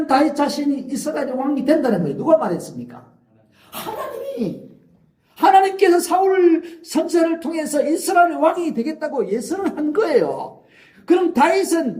다윗 자신이 이스라엘의 왕이 된다는 거예요. 누가 말했습니까? 하나님이. 하나님께서 사울 선지자를 통해서 이스라엘의 왕이 되겠다고 예언을 한 거예요. 그럼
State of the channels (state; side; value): identical; both; correlation 1.00